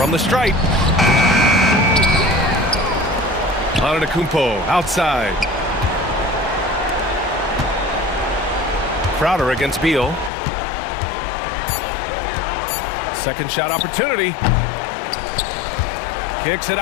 the stripe. Antetokounmpo outside. Crowder against Beal. Second shot opportunity. Kicks it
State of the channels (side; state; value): right; drops out; at 10.3 s